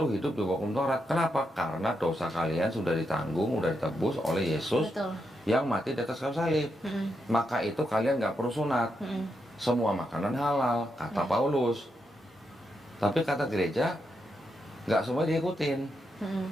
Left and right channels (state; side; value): normal; both; correlation 0.83